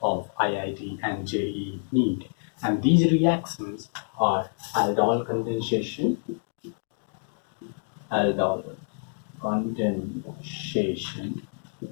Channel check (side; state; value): right; silent; digital silence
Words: of IIT and JEE NEET. And these reactions are aldol condensation, aldol condensation